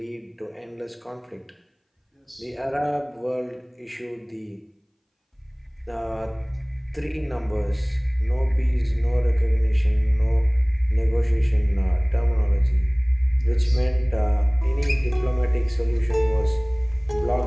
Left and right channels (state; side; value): identical; both; correlation 1.00